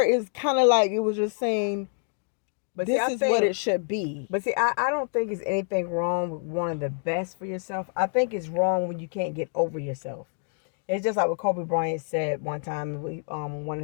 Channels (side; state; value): right; silent; digital silence